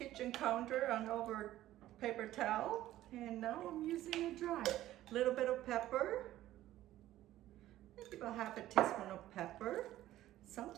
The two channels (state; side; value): quieter; left; 14.3 dB